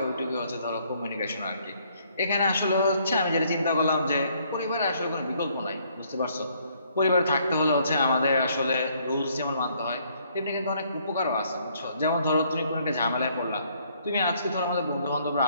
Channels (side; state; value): both; inverted; correlation -0.67